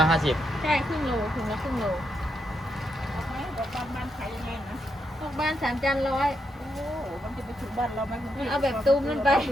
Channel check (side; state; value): both; normal; correlation 0.81